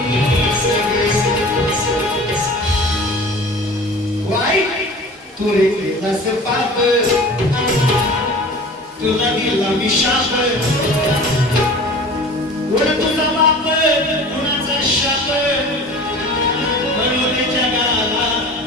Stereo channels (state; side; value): normal; both; correlation 0.40